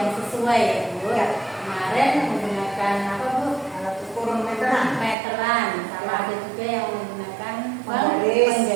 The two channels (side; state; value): left; drops out; at 5.2 s